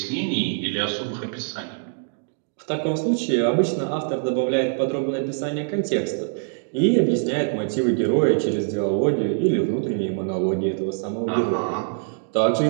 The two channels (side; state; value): left; silent; digital silence